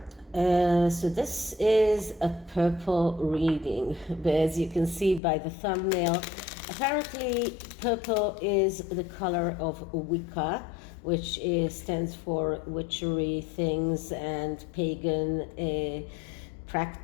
So this is a purple reading, but as you can see by the thumbnail, apparently purple is the color of Wicca, which stands for witchery things and pagan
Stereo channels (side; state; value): right; drops out; at 5.2 s